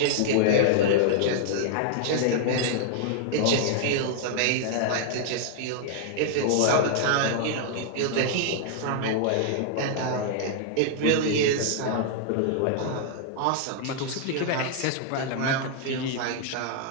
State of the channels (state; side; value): different; both; correlation 0.00